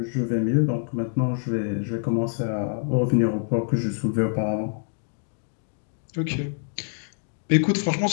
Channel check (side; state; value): right; silent; digital silence